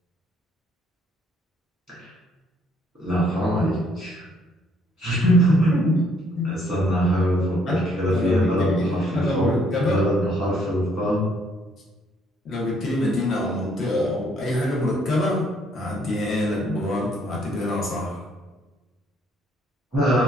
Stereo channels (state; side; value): normal; both; correlation 0.67